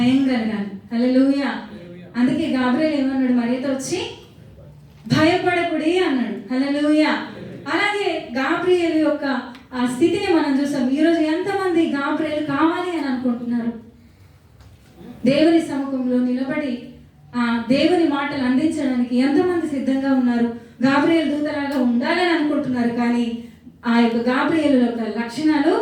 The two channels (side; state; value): both; identical; correlation 1.00